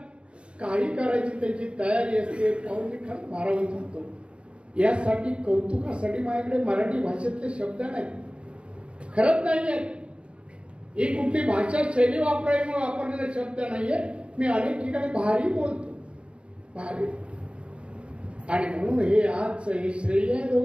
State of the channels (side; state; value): left; late; 0.057 ms